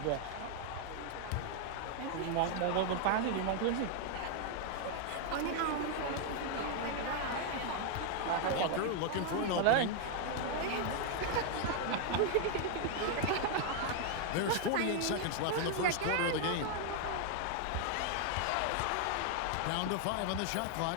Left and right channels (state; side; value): different; both; correlation 0.00